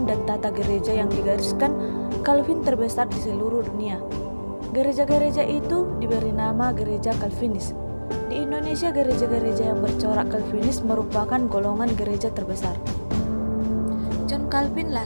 dan tata gereja yang digariskan Calvin terbesar di seluruh dunia. Gereja-gereja itu diberi nama gereja Calvinis. Di Indonesia, gereja-gereja yang bercorak Calvinis merupakan golongan gereja terbesar. John Calvin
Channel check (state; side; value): inverted; both; correlation -1.00